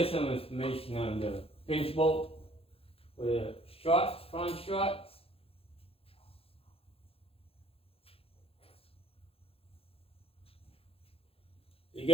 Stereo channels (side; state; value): right; late; 0.28 ms